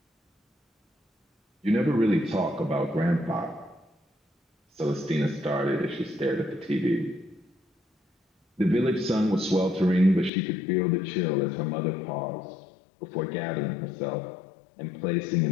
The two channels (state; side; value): drops out; right; at 10.3 s